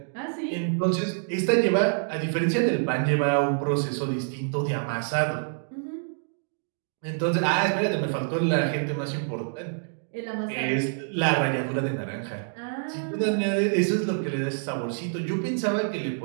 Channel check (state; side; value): silent; left; digital silence